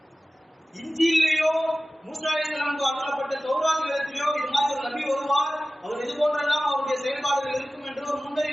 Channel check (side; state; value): both; normal; correlation 0.96